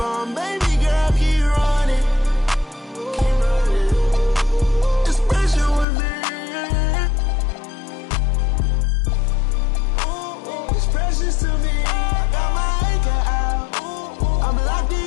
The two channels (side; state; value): right; drops out; at 5.9 s